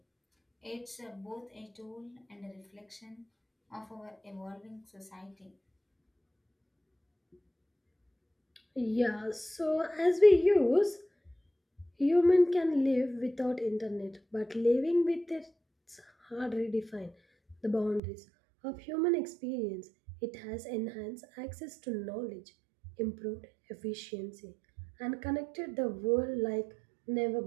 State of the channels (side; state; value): left; drops out; at 18.0 s